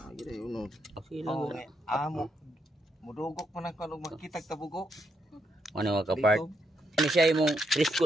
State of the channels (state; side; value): normal; both; correlation 0.78